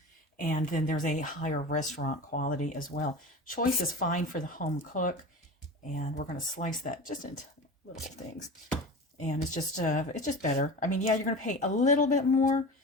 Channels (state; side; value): normal; both; correlation 0.32